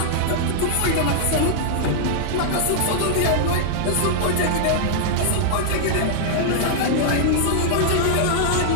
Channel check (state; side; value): different; both; correlation -0.01